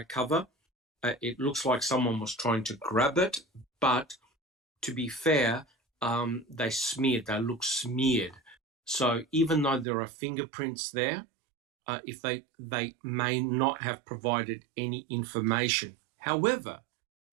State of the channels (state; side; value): drops out; left; at 9.9 s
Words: cover. It looks like someone was trying to grab it, but to be fair, they look smeared. So even though there are fingerprints there, if they may not have provided any information. However,